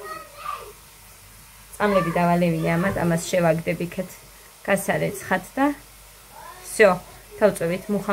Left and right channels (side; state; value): both; identical; correlation 1.00